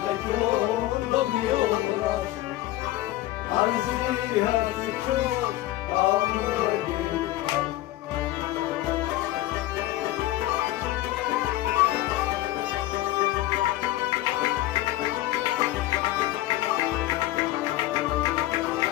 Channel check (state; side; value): quieter; right; 16.0 dB